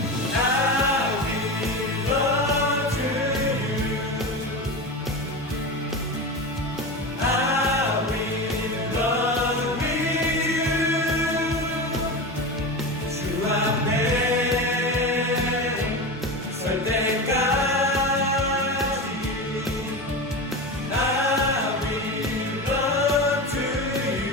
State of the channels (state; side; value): normal; both; correlation 0.24